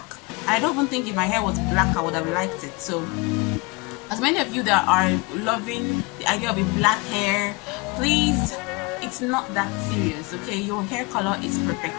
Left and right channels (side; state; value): right; quieter; 26.6 dB